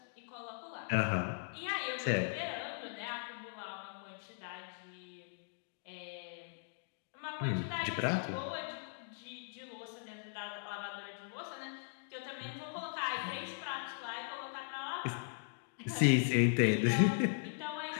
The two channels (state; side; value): silent; right; digital silence